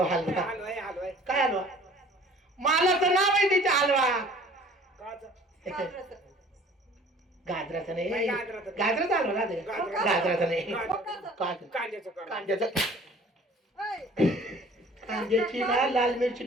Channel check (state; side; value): normal; both; correlation 0.51